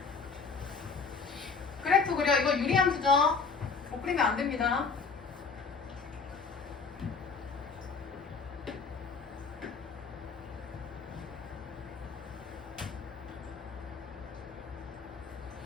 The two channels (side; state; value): right; quieter; 4.9 dB